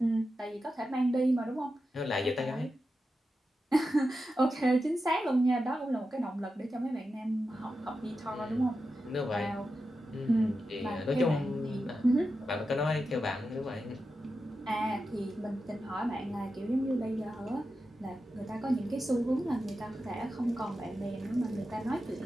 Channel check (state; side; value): normal; both; correlation 0.90